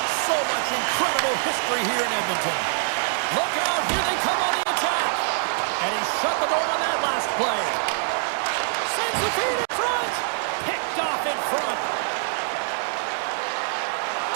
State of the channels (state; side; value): silent; left; digital silence